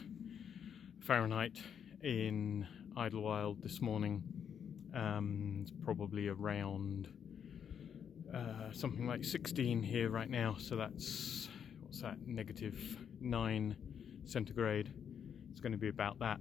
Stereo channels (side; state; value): right; quieter; 8.0 dB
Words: Fahrenheit in Idlewild this morning. It's probably around something like 16 here right now, so that's, what's that, -9 centigrade. It's going to be about that